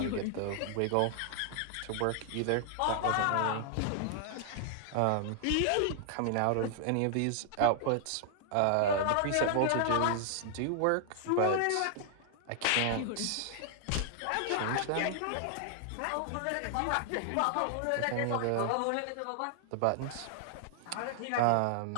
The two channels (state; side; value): different; both; correlation 0.00